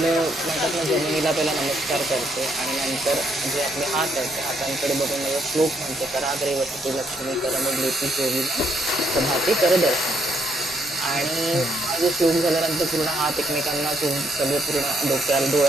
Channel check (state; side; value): normal; both; correlation 0.73